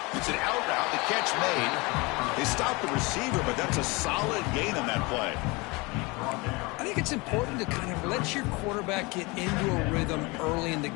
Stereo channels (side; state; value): right; quieter; 25.7 dB